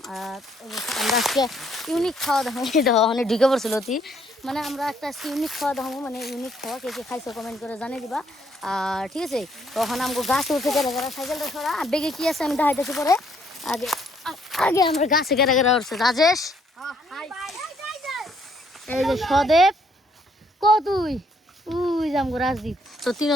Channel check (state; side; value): normal; both; correlation 0.68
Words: আর আমরা আজকে ইউনিক খাওয়া দাওয়া, দেখো অনেক ঢুকে পড়ছিল অতি, মানে আমরা একটা ইউনিক খাওয়া দাওয়া, মানে ইউনিক খাওয়া, কে কে খাইছো কমেন্ট করে জানিয়ে দিবা। আর ঠিক আছে, তখন আমাকে গাছে উঠে গেলে গেরা সাইকেলটা সরা, বেগে কি আছে আমি দেখাইতেছি পরে। আগে আগে আমরা গাছে গেরা গেরা উঠছে। রাজেশ, এই যে সদেব, ক তুই উই যামগো রাজদীপ। তো